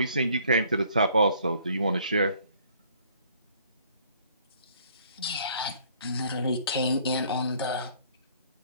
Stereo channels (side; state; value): both; inverted; correlation -0.60